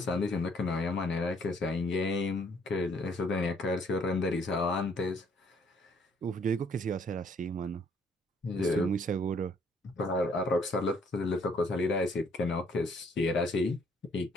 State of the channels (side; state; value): both; normal; correlation 0.64